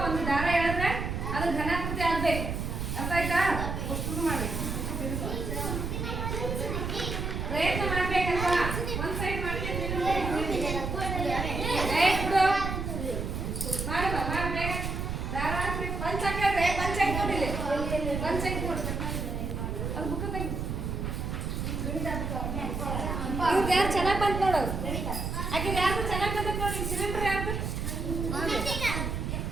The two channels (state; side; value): noise; right; rumble, 3 dB below the sound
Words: ಒಂದು ದಾರ ಹೇಳಿದ್ರೆ ಅದು ಘನಾಕೃತಿ ಆಗಬೇಕು ಅರ್ಥ ಆಯ್ತಾ ಶುರು ಮಾಡಬೇಕು ಪ್ರಯತ್ನ ಮಾಡ್ಬೇಕಲ್ವಾ ಒಂದು ಸೈಡ್ ಮಾಡ್ತೀನಿ ಮಾಡುವ ಮಾಡಬೇಕ ದಾರ ಹಾಕ್ಬೇಕು ಪಂಚ ಹಾಕಿದ್ರೆ ಪಂಚ ಹಾಕ್ಬಿಟ್ಟಿಲ್ಲ ಪಂಚ ಹಾಕ್ಬಿಡು ಅದು ಬುಕ್ಕ ತೆಗಿ ಇವ್ರು ಯಾರು ಚೆನ್ನಾಗಿ ಬಂತು ನೋಡು ಆಕೆ ಯಾರು ಚೆನ್ನಾಗಿ ಬಂದಕ್ಕೆ ನೋಡಿ ಸಿಲಿಂಡರ್ ಯಾರು